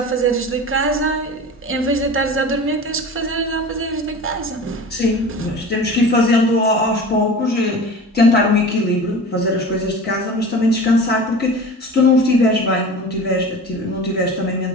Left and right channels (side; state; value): both; normal; correlation 0.36